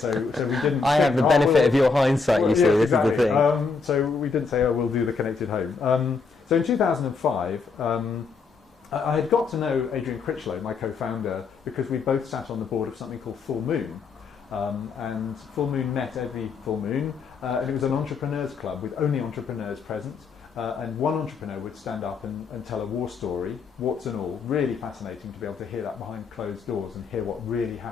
so we didn't... I have the benefit of your hindsight, you see, yeah, this exactly. is the thing. So we didn't say, oh, we'll do the connected home. So in 2005, I had got to know Adrian Critchlow, my co-founder, because we both sat on the board of something called Full Moon. And Full Moon met every full moon, and it was an entrepreneurs club with only entrepreneurs present. And one entrepreneur would stand up and tell a war story, warts and all. Really fascinating to be able to hear that behind closed doors and hear what really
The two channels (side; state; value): right; quieter; 4.7 dB